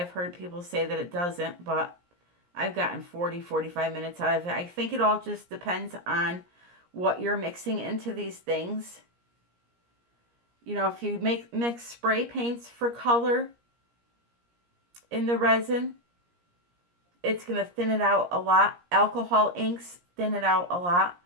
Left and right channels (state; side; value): late; left; 17 ms